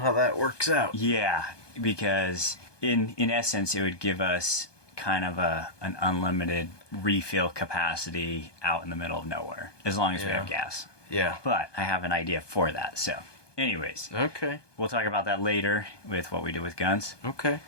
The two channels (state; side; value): late; right; 1.2 ms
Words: that works out. Yeah, because in essence, it would give us kind of an unlimited refill capacity out in the middle of nowhere, as long as we have gas. Yeah. But I have an idea for that, so anyways. Okay. We'll talk about that later with what we do with guns. Okay.